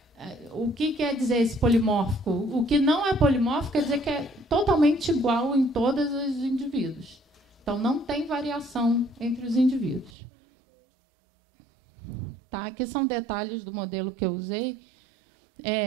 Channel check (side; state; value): left; drops out; at 10.1 s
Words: O que quer dizer esse polimórfico? O que não é polimórfico quer dizer que é totalmente igual em todos os indivíduos. Então, não tem variação entre os indivíduos. Tá? Aqui são detalhes do modelo que eu usei.